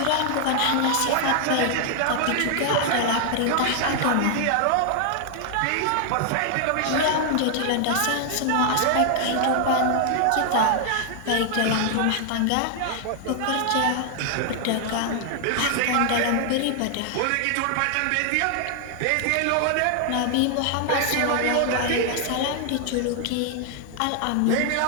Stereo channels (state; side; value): different; both; correlation 0.00